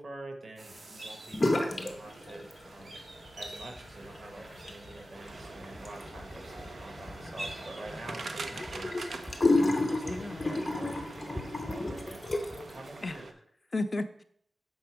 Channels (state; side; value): normal; both; correlation 0.94